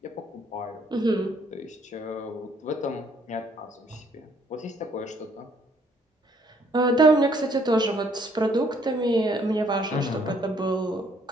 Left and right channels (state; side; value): normal; both; correlation 0.65